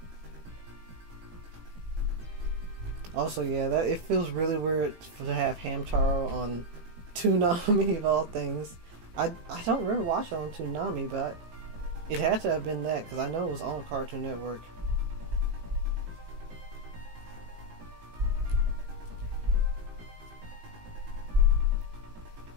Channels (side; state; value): left; late; 18 ms